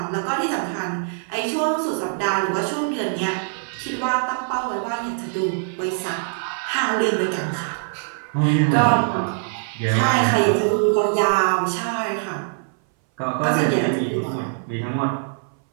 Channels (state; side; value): silent; left; 60 dB below the other